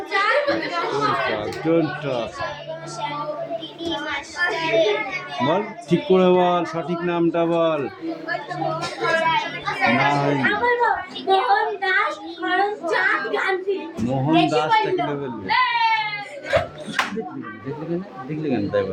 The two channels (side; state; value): both; identical; correlation 1.00